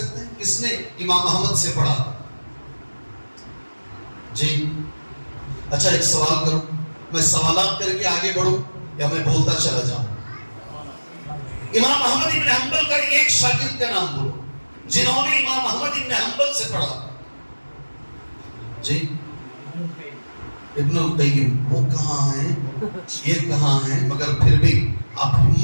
ہیں کس نے امام احمد سے پڑھا؟ جی اچھا، ایک سوال کروں، میں سوالات کر کے آگے بڑھوں یا میں بولتا چلا جاؤں؟ امام احمد ابن حنبل کا ایک شاگرد کا نام بولو جنہوں نے امام احمد ابن حنبل سے پڑھا۔ جی ابن القیم، وہ کہاں ہیں، یہ کہاں ہیں، مگر پھر بھی آپ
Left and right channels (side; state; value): both; inverted; correlation -1.00